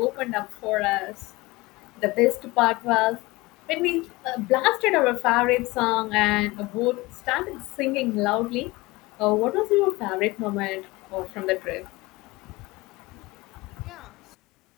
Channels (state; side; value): quieter; right; 21.8 dB